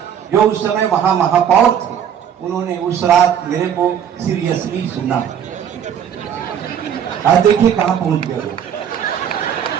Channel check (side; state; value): left; quieter; 8.8 dB